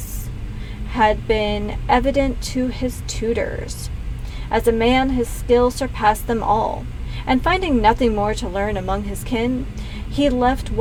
had been evident to his tutors. As a man, his skill surpassed them all, and finding nothing more to learn among his kin, he left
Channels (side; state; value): both; identical; correlation 1.00